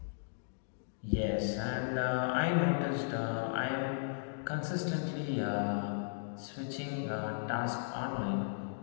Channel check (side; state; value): right; silent; digital silence